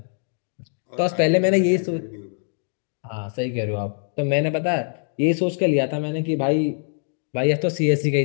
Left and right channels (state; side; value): silent; right; 62 dB below the other